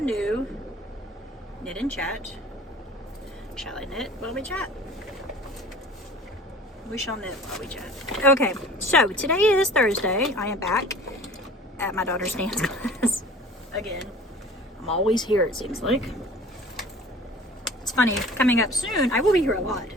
new knit and chat. Shall I knit while we chat? We shall knit while we chat. Okay, so today is Thursday. I am back at my daughter's dance class. Again, I'm always here, it seems like. It's funny, coming up soon, I will be here a lot.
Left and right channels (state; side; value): normal; both; correlation 0.45